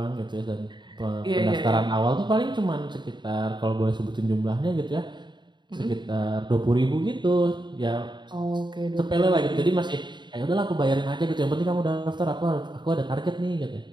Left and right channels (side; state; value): left; late; 0.22 ms